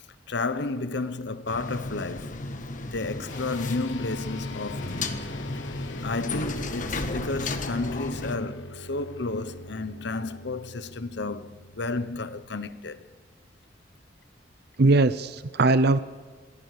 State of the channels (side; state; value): both; normal; correlation 0.38